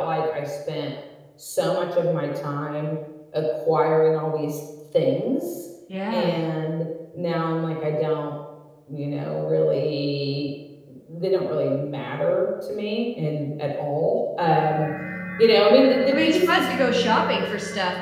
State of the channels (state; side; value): identical; both; correlation 1.00